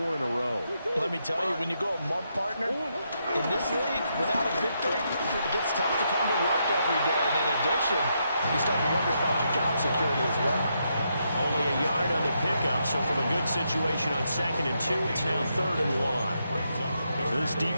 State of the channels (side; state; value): both; inverted; correlation -0.80